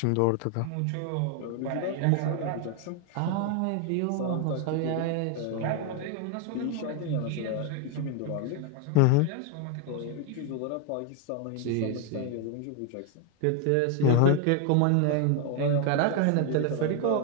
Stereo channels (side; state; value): both; different; correlation 0.01